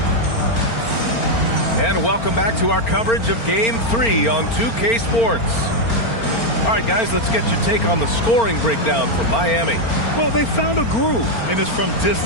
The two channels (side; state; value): right; late; 4.4 ms